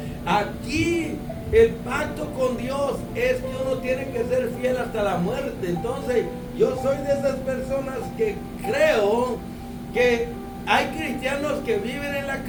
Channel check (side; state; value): both; identical; correlation 1.00